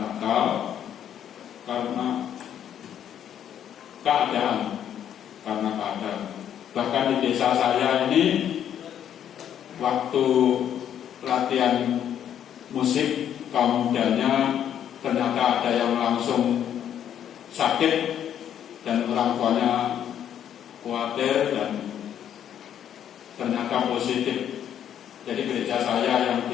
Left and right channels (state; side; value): quieter; right; 9.8 dB